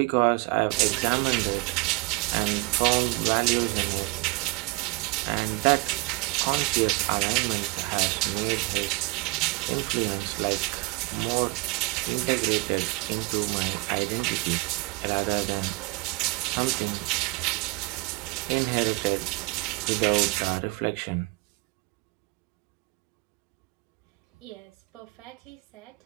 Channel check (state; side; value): quieter; left; 24.7 dB